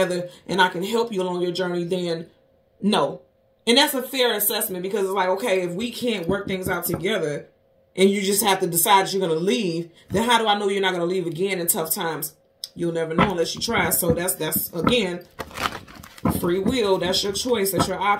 and I can help you along your journey, then no. And that's a fair assessment because it's like, okay, if we can't work things out together and you just have to decide that you're going to leave, then how do I know you're not going to leave again in tough times? You'll never know unless you try. So that's again, free will. That's your choice. That's your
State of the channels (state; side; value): identical; both; correlation 1.00